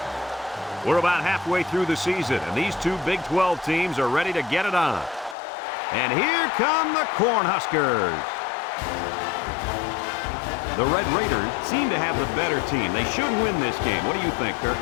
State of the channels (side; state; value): right; drops out; at 5.4 s